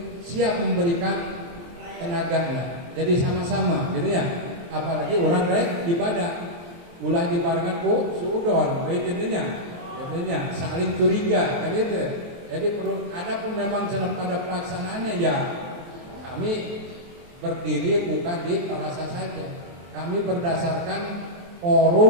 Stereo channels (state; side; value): late; left; 23 ms